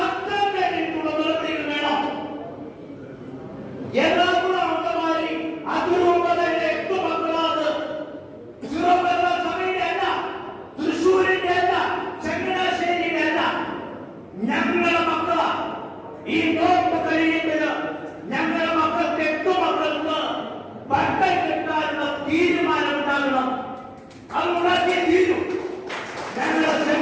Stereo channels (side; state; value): both; identical; correlation 1.00